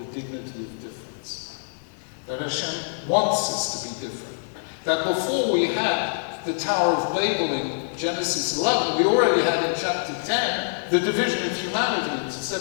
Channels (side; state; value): right; silent; digital silence